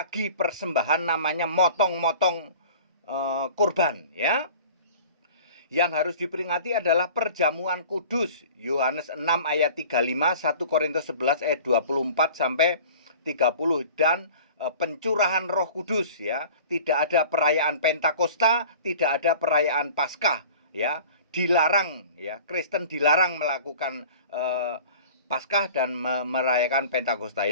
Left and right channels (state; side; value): inverted; both; correlation -0.43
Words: persembahan namanya motong-motong kurban, ya. Yang harus diperingati adalah perjamuan kudus. Yohanes 6 ayat 35, 1 Korintus 11 ayat 24 sampai 30, dan pencurahan Roh Kudus, ya. Tidak ada perayaan Pentakosta, tidak ada perayaan Paskah, ya. Dilarang, ya. Kristen dilarang melakukan Paskah dan merayakan Pentakosta.